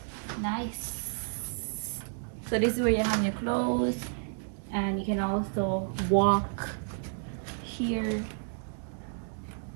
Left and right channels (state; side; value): silent; left; digital silence